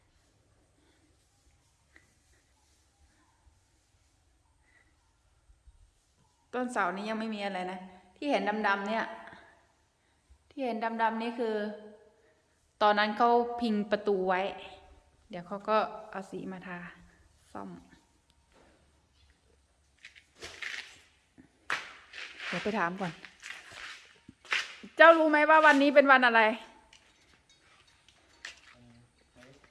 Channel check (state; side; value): identical; both; correlation 1.00